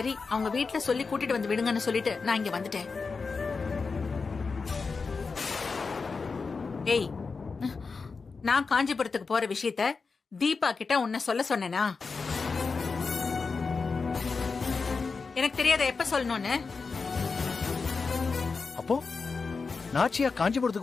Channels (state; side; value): quieter; right; 4.6 dB